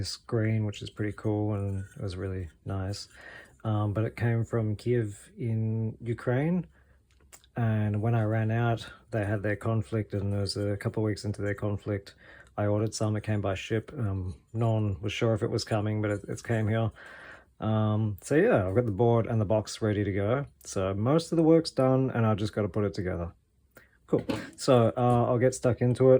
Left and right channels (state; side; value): identical; both; correlation 1.00